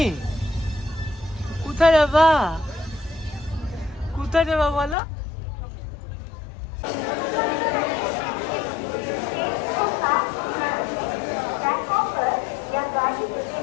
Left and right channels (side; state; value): right; drops out; at 5.0 s